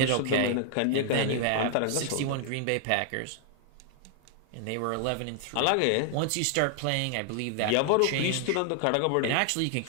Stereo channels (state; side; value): different; both; correlation 0.00